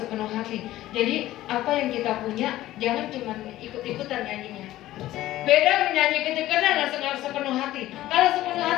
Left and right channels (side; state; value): right; quieter; 15.1 dB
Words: hati. Jadi apa yang kita punya jangan cuma ikut-ikutan nyanyinya. Beda menyanyi ketika dengan sepenuh hati. Kalau sepenuh